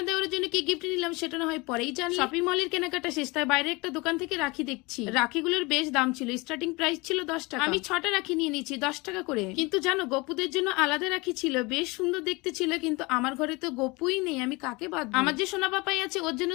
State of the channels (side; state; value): right; quieter; 25.1 dB